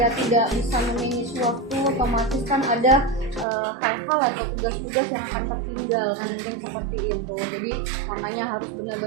tidak bisa memanage waktu, otomatis kan ada hal-hal atau tugas-tugas yang akan tertinggal kan, mungkin seperti itu. Jadi makanya harus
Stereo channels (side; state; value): left; drops out; at 3.5 s